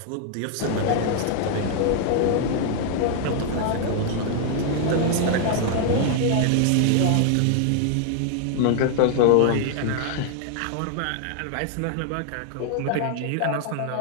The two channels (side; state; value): both; different; correlation 0.00